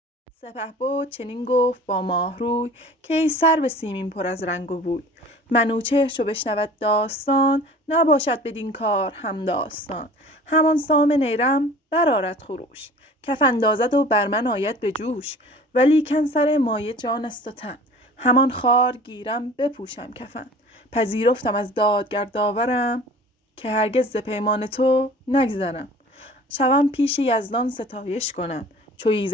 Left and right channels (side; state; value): both; normal; correlation 0.44